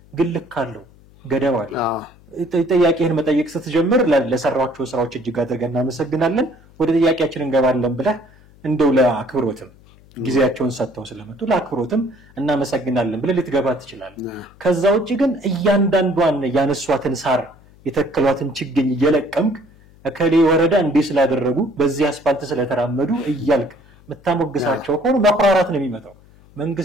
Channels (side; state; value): left; noise; hum, 26 dB below the sound